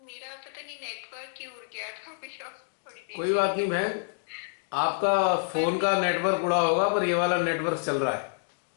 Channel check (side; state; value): right; silent; digital silence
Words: पता नहीं नेटवर्क क्यों उड़ गया था भैया थोड़ी देर कोई के बात नहीं लिए। बहन, आपका पर फोन का नेटवर्क उड़ा होगा, पर ये वाला नेटवर्क चल रहा है।